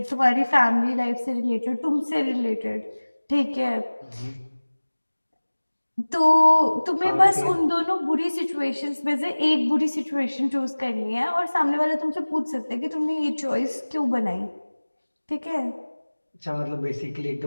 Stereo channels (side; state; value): both; inverted; correlation -1.00